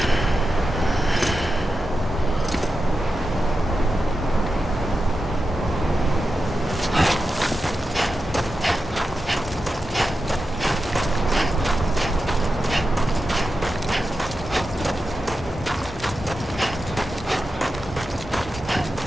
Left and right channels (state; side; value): normal; both; correlation 0.90